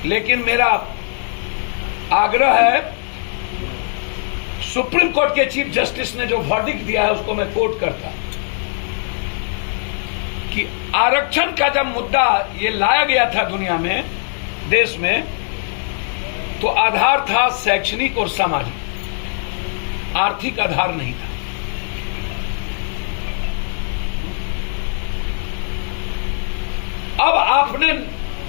लेकिन मेरा आग्रह है, सुप्रीम कोर्ट के चीफ जस्टिस ने जो वर्डिक्ट दिया है उसको मैं कोट करता कि आरक्षण का जब मुद्दा ये लाया गया था दुनिया में, देश में, तो आधार था शैक्षणिक और सामाजिक, आर्थिक आधार नहीं था। अब आपने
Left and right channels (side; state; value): right; silent; 66 dB below the other